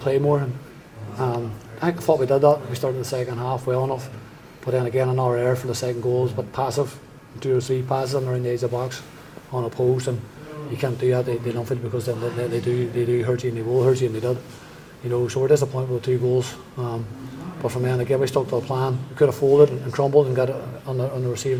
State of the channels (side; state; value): both; identical; correlation 1.00